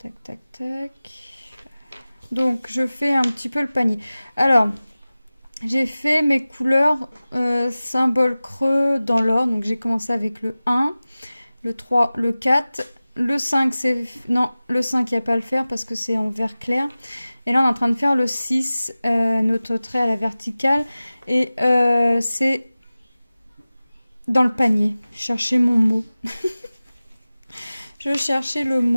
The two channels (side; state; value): both; inverted; correlation -0.97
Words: tac, tac. Donc je fais un petit peu le panier. Alors, j'ai fait mes couleurs symbole creux dans l'ordre. Donc j'ai commencé avec le 1, le 3, le 4. Le 5, c'est... Non, le 5, il n'y a pas à le faire parce que c'est en vert clair. Et là, on est en train de faire le 6, notre trait à la verticale. Et c'est dans le panier. Je cherchais mon mot. Je cherchais le